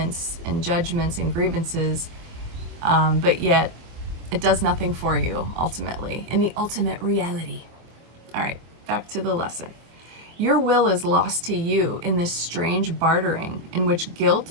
and judgments and grievances, but yet it does nothing for you ultimately in the ultimate reality. All right, back to the lesson. Your will is lost to you in this strange bartering in which guilt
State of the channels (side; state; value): left; late; 24 ms